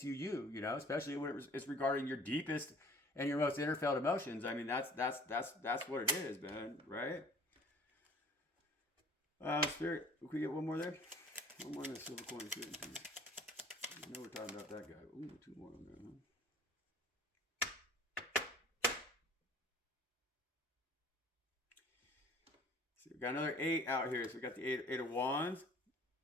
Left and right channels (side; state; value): both; normal; correlation 0.50